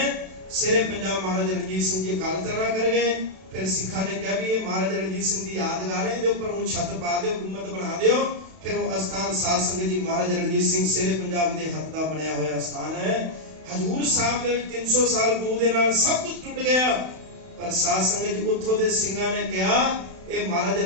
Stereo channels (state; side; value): late; left; 32 ms